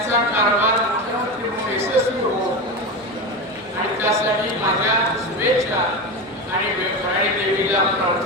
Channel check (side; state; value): both; normal; correlation 0.21